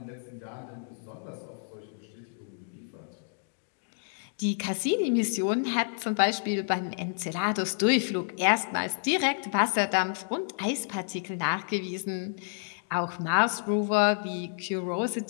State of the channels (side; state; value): right; silent; digital silence